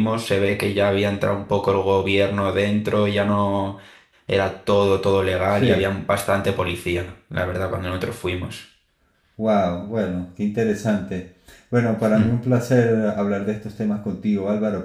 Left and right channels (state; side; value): identical; both; correlation 1.00